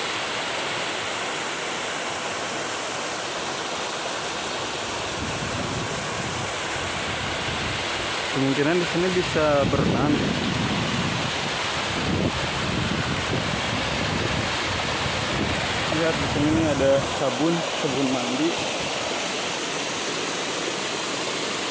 Kemungkinan di sini bisa berenang. Lihat di sini ada sabun mandi.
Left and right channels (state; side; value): identical; both; correlation 1.00